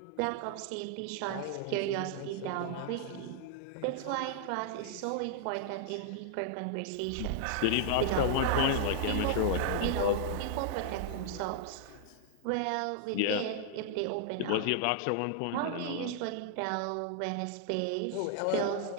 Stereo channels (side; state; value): both; different; correlation 0.00